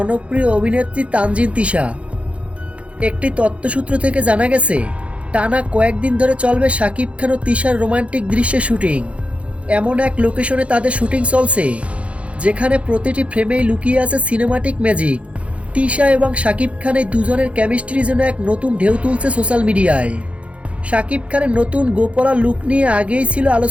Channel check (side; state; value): left; late; 0.062 ms